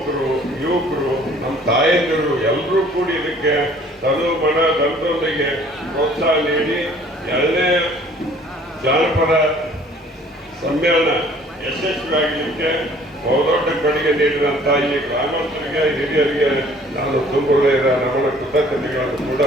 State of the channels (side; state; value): both; normal; correlation 0.55